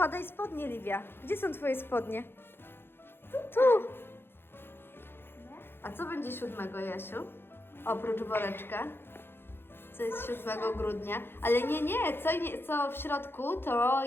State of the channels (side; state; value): right; late; 0.11 ms